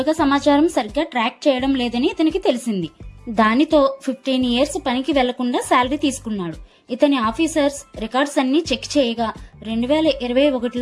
సమాచారం సరిగ్గా ట్రాక్ చేయడం లేదని ఇతనికి తెలిసింది. దానితో 15 ఇయర్స్ పనికి వెళ్లకుండా శాలరీ తీసుకున్నాడు. ఇతని ఆఫీసర్స్ రికార్డ్స్ అన్ని చెక్ చేయగా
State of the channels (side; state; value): both; identical; correlation 1.00